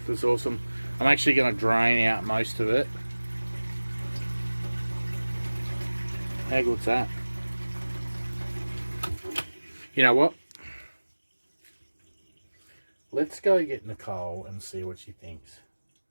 It's awesome. I'm actually going to drain out most of it. How good's that? You know what? Let's go get Nicole and see what she thinks.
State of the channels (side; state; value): both; inverted; correlation -1.00